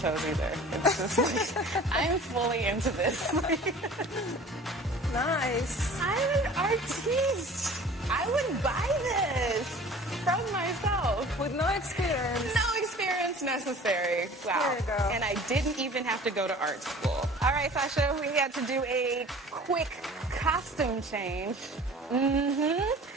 either. It's just like, I'm fully into this. Nice. I'm an artiste. I would buy this from myself. With no experience. No experience necessary. Wow. There you go. And I didn't even have to go to art school. All right, Sasha, we had to do a quick costume change.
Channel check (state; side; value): normal; both; correlation 0.45